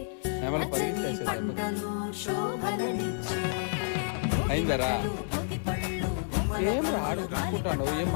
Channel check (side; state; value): right; silent; digital silence